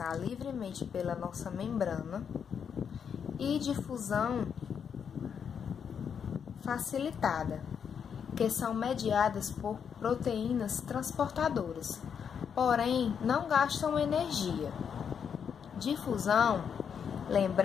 livremente pela nossa membrana, e difusão facilitada, que são mediadas por proteínas transportadoras, porém não gastam energia. Difusão,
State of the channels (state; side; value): quieter; right; 7.3 dB